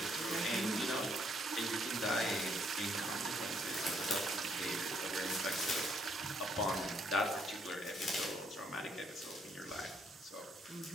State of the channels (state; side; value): normal; both; correlation 0.70